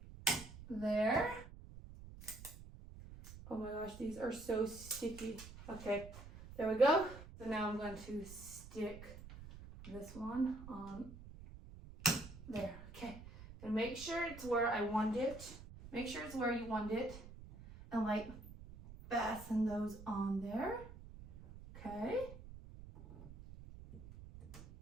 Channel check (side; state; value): right; noise; rumble, 15 dB below the sound